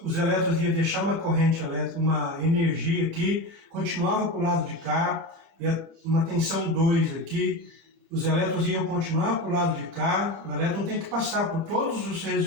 os elétrons iam deixar uma corrente elétrica, uma energia aqui, continuava para o lado de cá, ia uma tensão 2 aqui, os elétrons iam continuar para o lado de cá, o elétron tem que passar por todos os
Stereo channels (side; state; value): left; late; 30 ms